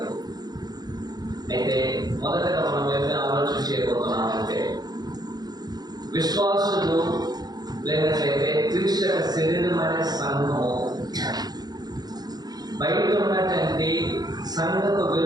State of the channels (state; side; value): late; left; 0.19 ms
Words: అయితే మొదటగా మనం ఏమైనా ఆలోచన చేయబోతున్నామంటే, విశ్వాసులు లేనట్లయితే క్రీస్తు శరీరం అనే సంఘము బయట ఉన్నటువంటి సంఘపు